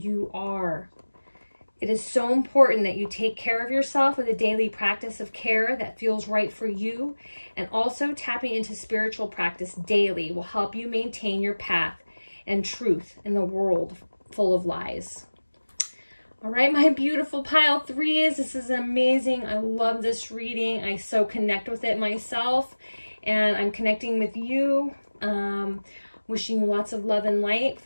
you are. It is so important that you take care of yourself with a daily practice of care that feels right for you. And also tapping into spiritual practice daily will help you maintain your path and truth in the world full of lies. All right, my beautiful pile 3s, this is amazing. I love this reading. I so connect with it myself, and I'm connecting with you. Wishing you lots of love and light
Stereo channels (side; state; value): both; inverted; correlation -1.00